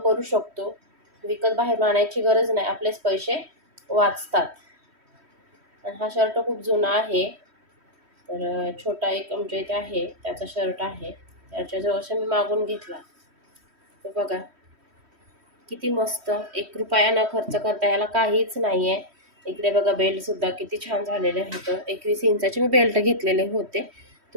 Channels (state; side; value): late; left; 3.1 ms